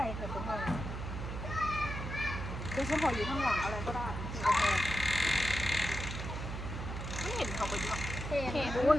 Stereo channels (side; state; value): right; noise; hum, 5 dB below the sound